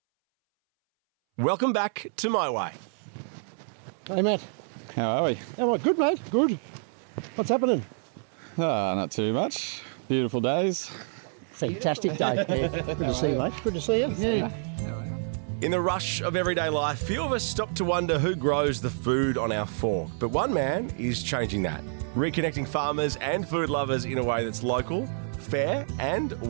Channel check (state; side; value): silent; left; 59 dB below the other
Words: welcome back to My Way. Hey, Matt. How are we? How are you? Good, mate. Good. What's happening? Not too much. Beautiful days. Fantastic day. Yeah. Good to see you, mate. Good to see you. Yeah. In the rush of everyday life, few of us stop to wonder who grows the food on our fork. But one man is changing that, reconnecting farmers and food lovers in a way that's local, fair, and